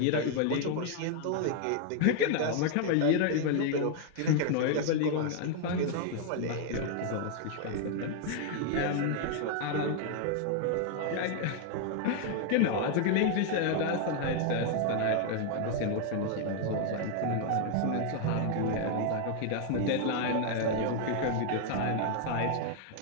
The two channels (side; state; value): both; different; correlation 0.00